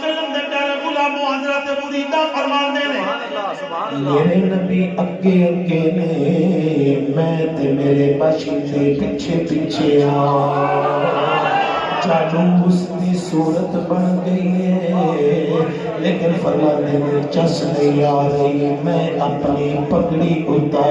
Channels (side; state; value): both; identical; correlation 1.00